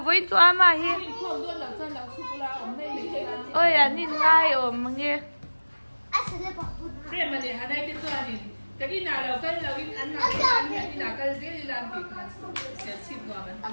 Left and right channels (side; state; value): both; inverted; correlation -1.00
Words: với cho mà hi ôi anh nhìn ngay ôm mà nghe Thế mà để hà đây cái cho anh cái gì nào là cái là cái ăn nào cái nào cái gì làm việc sẽ chịu vào